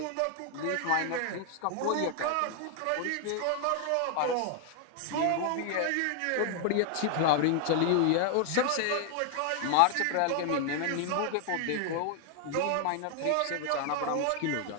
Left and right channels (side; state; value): both; different; correlation 0.00